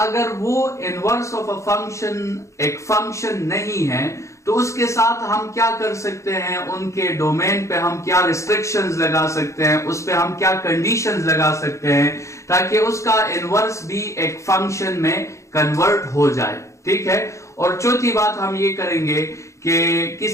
अगर वो इनवर्स ऑफ अ फंक्शन एक फंक्शन नहीं है तो उसके साथ हम क्या कर सकते हैं, उनके डोमेन पे हम क्या रिस्ट्रिक्शंस लगा सकते हैं, उस पे हम क्या कंडीशंस लगा सकते हैं ताकि उसका इनवर्स भी एक फंक्शन में कन्वर्ट हो जाए। ठीक है, और चौथी बात हम ये करेंगे कि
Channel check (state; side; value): late; right; 0.14 ms